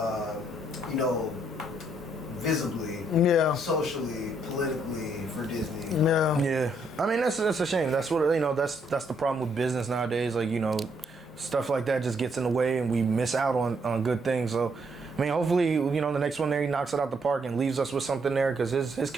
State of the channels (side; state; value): both; normal; correlation 0.72